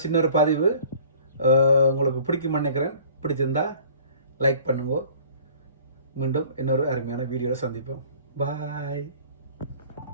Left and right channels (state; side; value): inverted; both; correlation -0.51